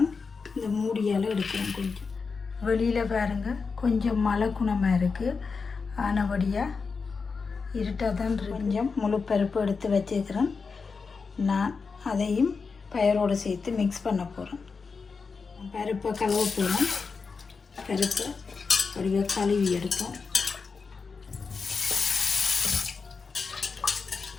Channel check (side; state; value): right; quieter; 4.9 dB